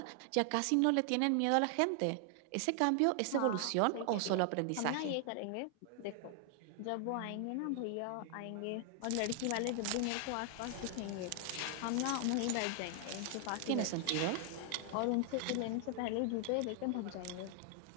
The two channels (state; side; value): different; both; correlation 0.00